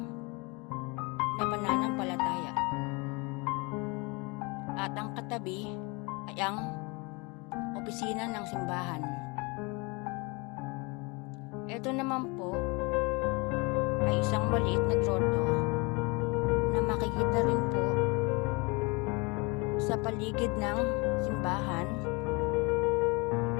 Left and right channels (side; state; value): right; quieter; 28.1 dB